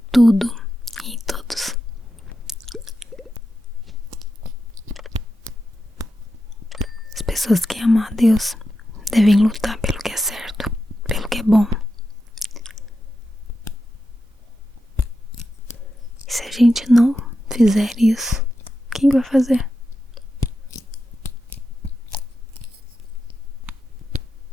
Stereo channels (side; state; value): both; normal; correlation 0.89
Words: tudo e em todos. As pessoas que amam a Deus devem lutar pelo que é certo, pelo que é bom. E se a gente não fizer isso, quem vai fazer?